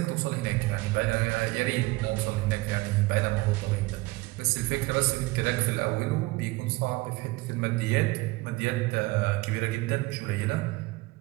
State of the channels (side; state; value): left; quieter; 21.9 dB